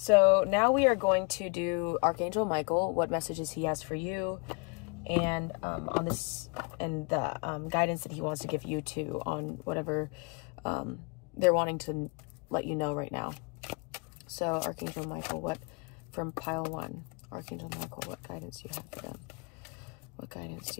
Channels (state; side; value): quieter; right; 31.9 dB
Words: now we are going to do Archangel Michael, what messages he has for you, and on this, and the guidance that he wants to give you too on whatever they're wanting to let you know right now. So Archangel Michael, from pile 1, Archangel Michael, what guidance do you have for them? What guidance